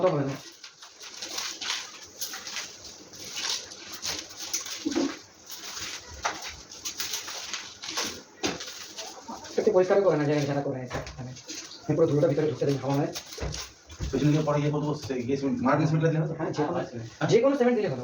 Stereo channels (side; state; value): both; identical; correlation 1.00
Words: হবে না একটু পরিষ্কার করে না জায়গা যারা করে মানে পুরো ধুলোটা ভিতরে ঢুকতে দেবে হাওয়া হয় পেছনে গিয়ে পরে গিয়ে বলবো মার্বেল সিমেন্টটা দিলে হ্যাঁ যে কোনো সিমেন্ট দিলে ভালো